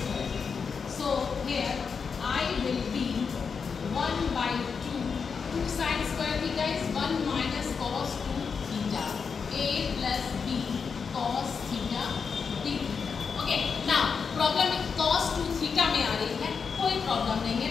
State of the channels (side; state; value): right; quieter; 5.8 dB